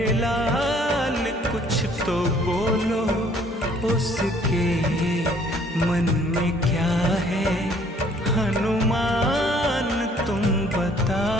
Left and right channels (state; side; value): normal; both; correlation 0.60